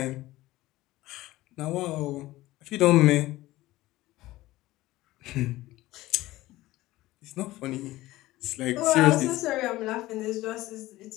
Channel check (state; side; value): quieter; right; 17.4 dB